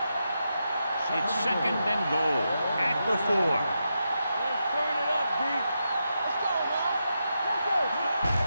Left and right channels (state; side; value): inverted; both; correlation -0.86